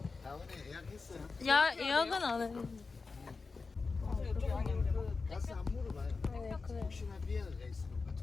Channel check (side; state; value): right; quieter; 4.3 dB